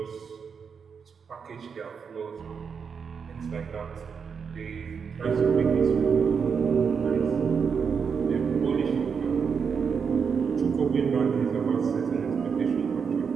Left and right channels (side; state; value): left; quieter; 6.2 dB